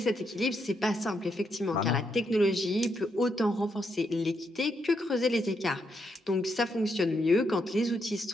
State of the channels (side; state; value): both; normal; correlation 0.79